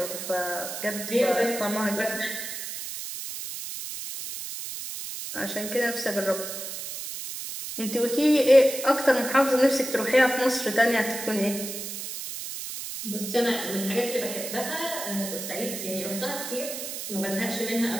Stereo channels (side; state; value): right; noise; hiss, 7 dB below the sound